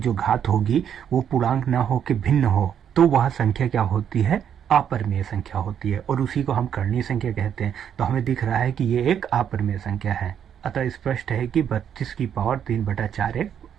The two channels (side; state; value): left; quieter; 8.8 dB